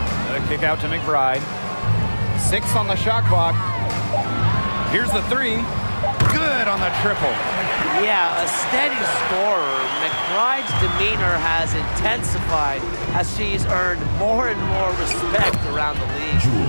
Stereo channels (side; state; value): both; inverted; correlation -1.00